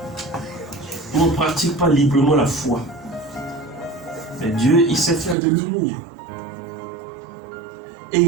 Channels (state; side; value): drops out; left; at 5.4 s